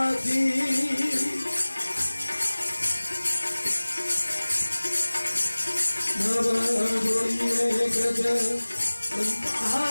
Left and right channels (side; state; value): both; inverted; correlation -1.00